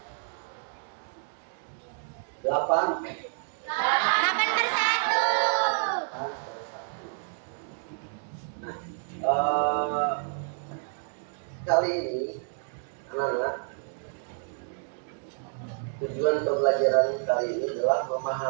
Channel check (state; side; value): silent; left; digital silence